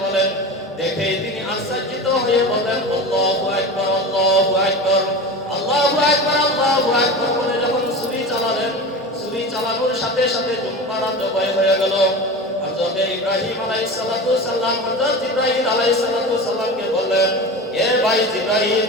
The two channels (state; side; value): normal; both; correlation 0.29